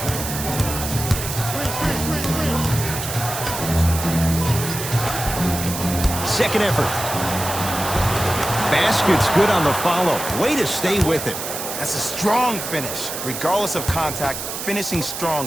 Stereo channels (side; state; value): right; noise; hiss, 6 dB below the sound